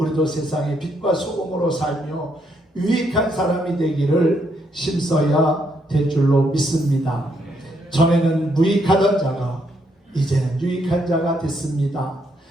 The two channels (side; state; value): both; normal; correlation 0.74